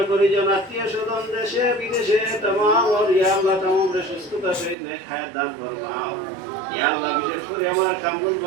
পরিজন আত্মীয় স্বজন দেশে বিদেশে तमाम और ইয়া আল্লাহ तमाम রে সুস্থতা সহিত নেক হায়াত দান ফরমাও ইয়া আল্লাহ বিশেষ করে আমার কামরুল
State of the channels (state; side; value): drops out; left; at 4.8 s